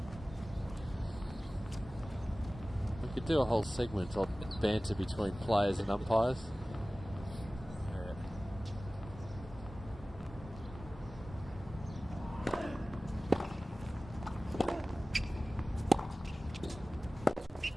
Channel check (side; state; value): both; normal; correlation 0.97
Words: We could do a whole segment on banter between players and umpires.